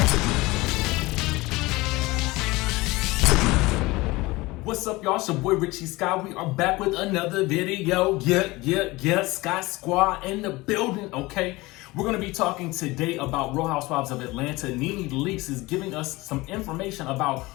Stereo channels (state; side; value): quieter; right; 21.3 dB